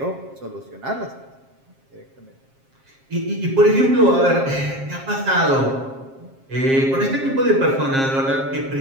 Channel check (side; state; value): left; late; 7.5 ms